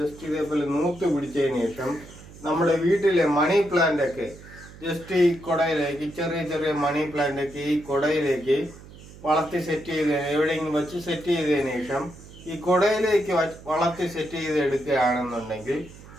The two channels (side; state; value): right; noise; hum, 19 dB below the sound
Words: ഇതേപോലെ നൂത്ത് പിടിച്ചതിന് ശേഷം നമ്മുടെ വീട്ടിലെ മണി പ്ലാന്റ് ഒക്കെ ജസ്റ്റ് ഈ കുടയിലേക്ക് ചെറിയ ചെറിയ മണി പ്ലാന്റ് ഒക്കെ ഈ കുടയിലേക്ക് വളർത്തി സെറ്റ് ചെയ്ത് എവിടെയെങ്കിലും വെച്ച് സെറ്റ് ചെയ്തതിന് ശേഷം ഈ കുടയിലേക്ക് വളർത്തി സെറ്റ് ചെയ്ത് എടുക്കുകയാണെന്നുണ്ടെങ്കിൽ